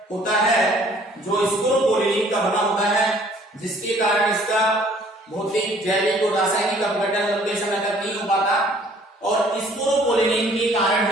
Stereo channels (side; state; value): both; normal; correlation 0.57